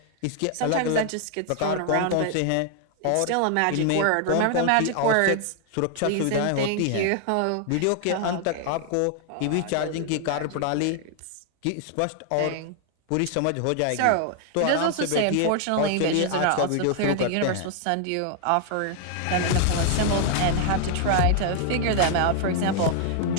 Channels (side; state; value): both; different; correlation 0.00